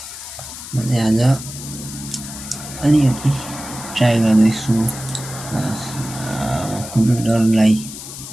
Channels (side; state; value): left; noise; hiss, 11 dB below the sound